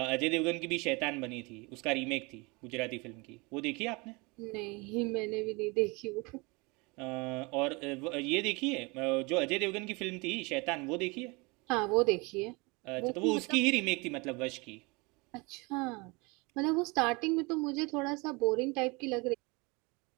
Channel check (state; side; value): quieter; left; 27.2 dB